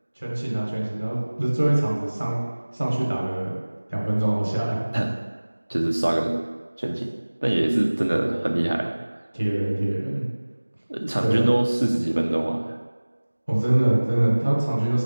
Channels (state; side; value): inverted; both; correlation -1.00